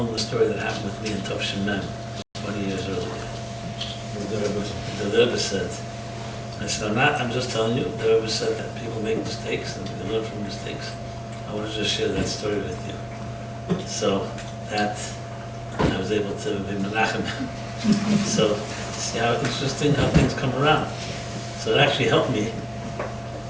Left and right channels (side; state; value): both; identical; correlation 1.00